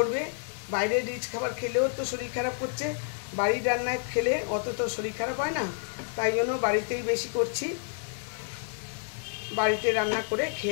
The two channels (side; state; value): right; silent; 58 dB below the other